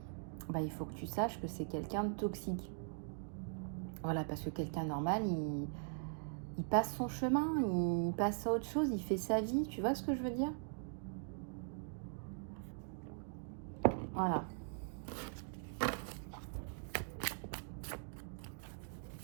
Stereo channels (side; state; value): left; silent; digital silence